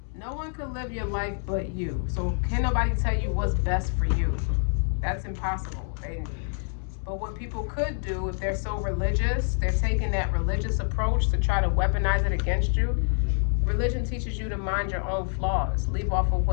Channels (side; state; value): right; silent; 60 dB below the other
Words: No one can live your life but you. So can nobody tell you what's best for you? That's impossible. But what people could do, if they're so religious, they're taking that religious approach to try to weaponize it against you. Religion teaches you to mind your own flaws. Leave off of